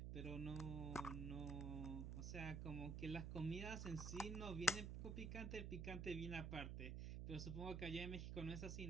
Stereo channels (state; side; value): noise; right; hum, 2 dB below the sound